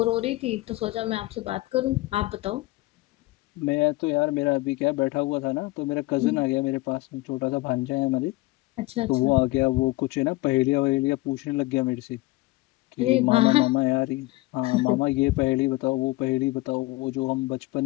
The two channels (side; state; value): right; quieter; 20.3 dB